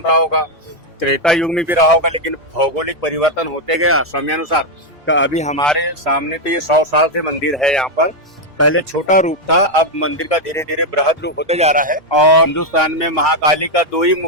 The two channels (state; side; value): normal; both; correlation 0.02